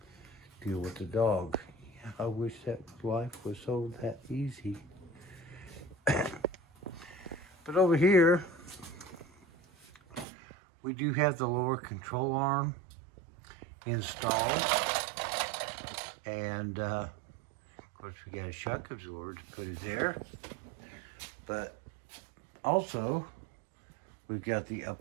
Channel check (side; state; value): left; drops out; at 10.2 s